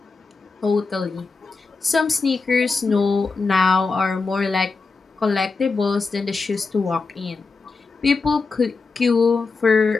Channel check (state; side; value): quieter; right; 4.2 dB